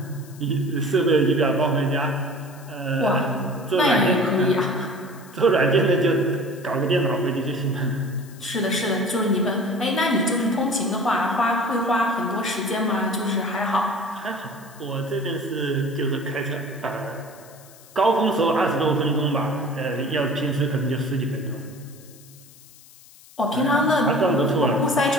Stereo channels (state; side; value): noise; left; hiss, 23 dB below the sound